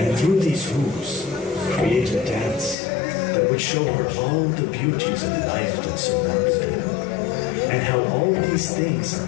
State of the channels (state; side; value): drops out; right; at 2.8 s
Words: through these hoops, create a dance that would show her all the beauties of life that surrounded her, and how all these things are